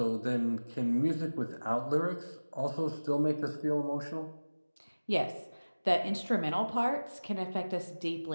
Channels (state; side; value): inverted; both; correlation -1.00